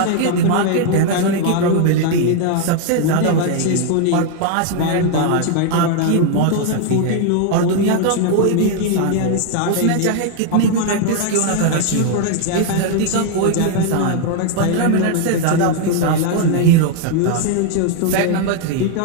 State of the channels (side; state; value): both; different; correlation 0.00